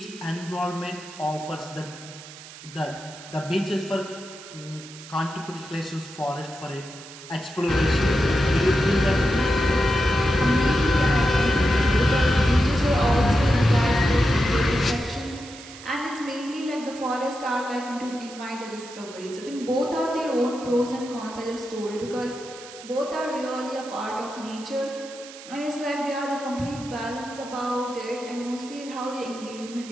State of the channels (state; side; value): noise; right; hiss, 16 dB below the sound